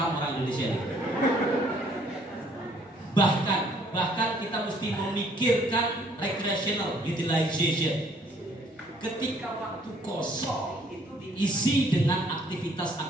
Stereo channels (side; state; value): both; normal; correlation 0.62